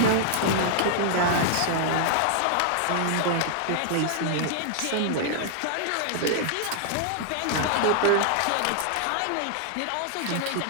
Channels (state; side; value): different; both; correlation -0.01